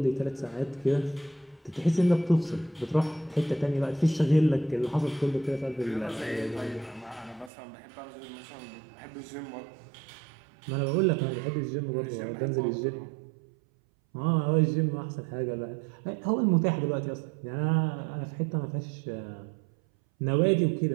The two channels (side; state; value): left; drops out; at 7.5 s